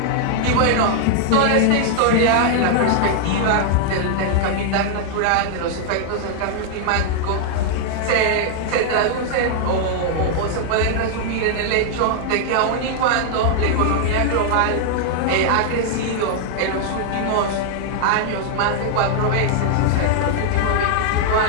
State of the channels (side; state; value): both; different; correlation -0.01